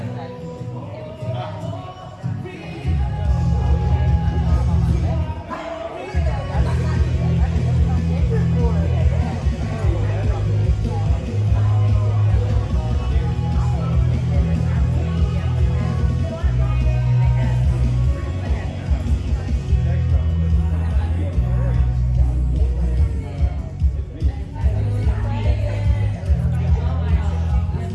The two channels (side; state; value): both; identical; correlation 1.00